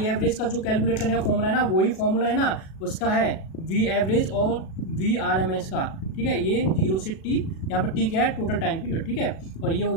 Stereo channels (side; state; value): right; late; 37 ms